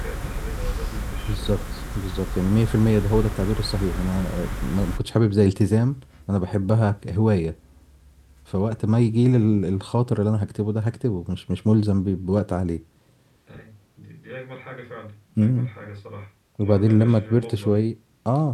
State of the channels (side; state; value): both; identical; correlation 1.00